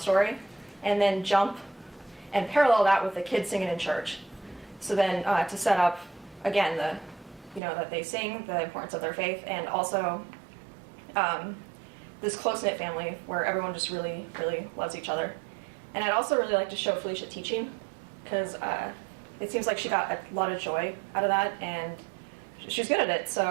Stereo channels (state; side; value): drops out; left; at 7.6 s